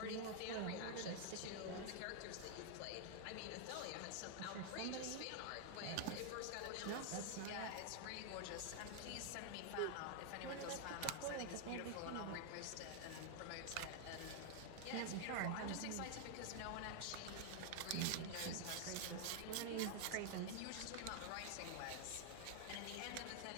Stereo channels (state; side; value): different; both; correlation 0.00